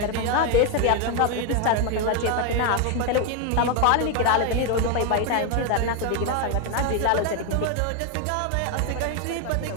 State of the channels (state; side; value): different; both; correlation 0.01